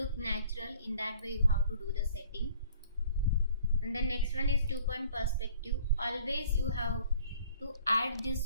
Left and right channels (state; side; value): inverted; both; correlation -0.54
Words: natural. In that way you have to do the setting. And the next one is 2-point perspective. Always you have to add